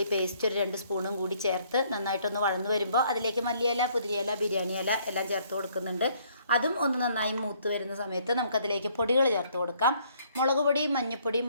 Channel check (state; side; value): inverted; both; correlation -0.64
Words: പേസ്റ്റ് ഒരു 2 സ്പൂണും കൂടി ചേർത്ത് നന്നായിട്ടൊന്ന് വഴന്ന് വരുമ്പോൾ അതിലേക്ക് മല്ലിയില, പുതിരിയില, ബിരിയാണി ഇല എല്ലാം ചേർത്ത് കൊടുക്കുന്നുണ്ട്. അതും ഒന്ന് നന്നായി മൂത്ത് വരുന്ന സമയത്ത് നമുക്കതിലേക്ക് പൊടികൾ ചേർത്ത് കൊടുക്കാം. മുളക് പൊടി, മഞ്ഞൾപ്പൊടി,